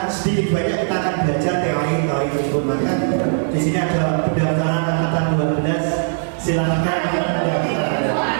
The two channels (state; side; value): silent; left; digital silence